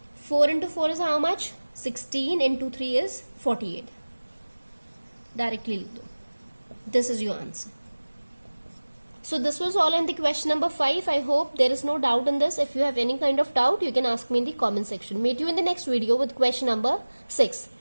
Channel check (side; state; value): both; inverted; correlation -1.00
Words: 4 into 4 is how much? 16 into 3 is 48. Directly लिख दो. This is your answer. So this was all in the question number 5. I hope there is no doubt in this. If you have any kind of doubt, you can ask me in the comment section. Meet you in the next video with question number 6.